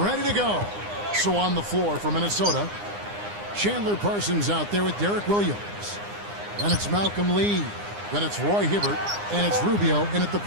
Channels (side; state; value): left; late; 9.8 ms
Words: ready to go. So on the floor for Minnesota, Chandler Parsons out there with Derek Williams. Then it's Malcolm Lee. Then it's Roy Hibbert, and it's Rubio in at the